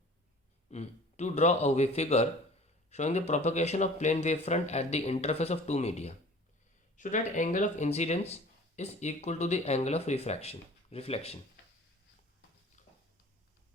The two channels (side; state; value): both; normal; correlation 0.46